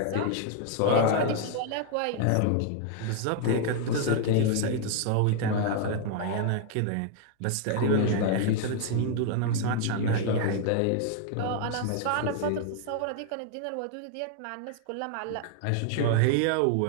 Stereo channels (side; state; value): both; different; correlation 0.00